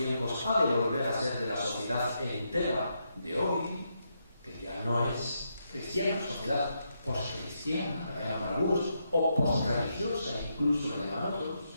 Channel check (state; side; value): inverted; both; correlation -0.81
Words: ha de volver a ser de la sociedad entera de hoy, que ya no es cristiana, sociedad poscristiana, la llaman algunos, o posreligiosa, incluso la llaman otros.